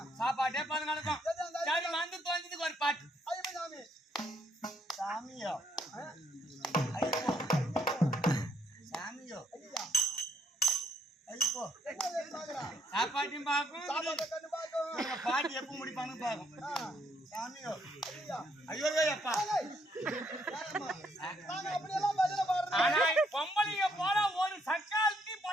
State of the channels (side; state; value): both; normal; correlation 0.71